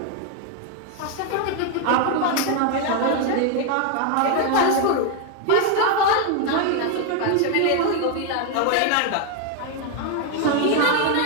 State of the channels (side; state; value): both; different; correlation 0.01